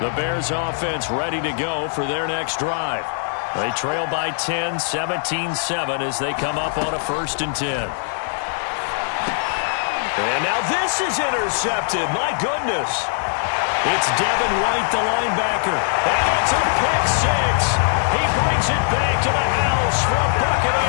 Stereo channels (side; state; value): right; silent; 65 dB below the other